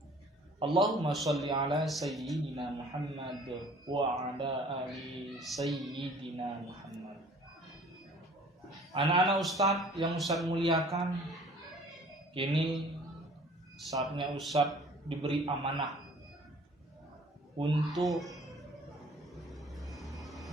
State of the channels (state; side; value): normal; both; correlation 0.51